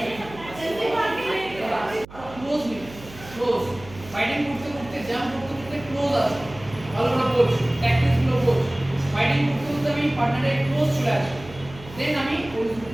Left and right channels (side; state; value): right; noise; hum, 18 dB below the sound